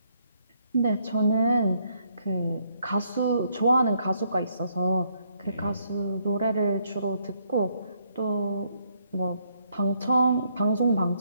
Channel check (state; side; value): inverted; both; correlation -0.73